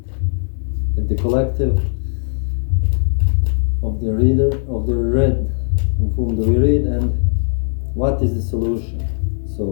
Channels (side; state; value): right; silent; 65 dB below the other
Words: at the collective of the reader, of the read, of whom do we read, and what is the solution.